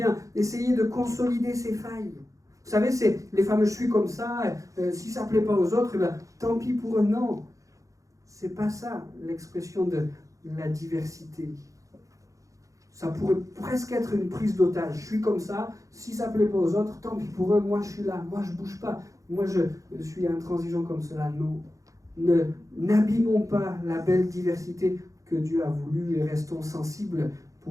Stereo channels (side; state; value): left; late; 0.16 ms